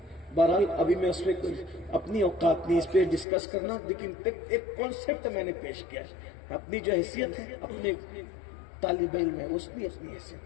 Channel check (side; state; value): right; drops out; at 3.2 s